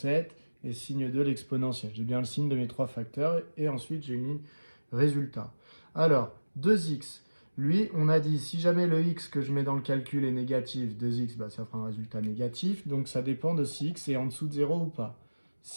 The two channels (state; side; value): inverted; both; correlation -1.00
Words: et signe 2, l'exponentielle. J'ai bien le signe de mes trois facteurs, et ensuite j'ai une ligne résultat. Alors, 2x, lui, on a dit, si jamais le x que je mets dans le calcul est négatif, 2x, bah, ça fera un résultat négatif, donc ça dépend de si x est en dessous de 0 ou pas.